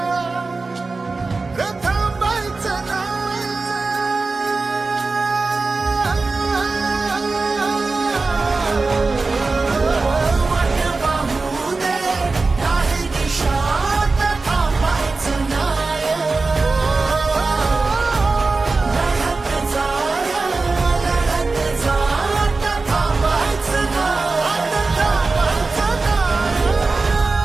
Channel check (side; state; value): left; quieter; 3.8 dB